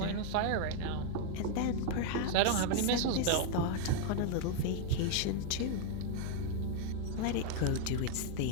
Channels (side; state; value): both; different; correlation 0.00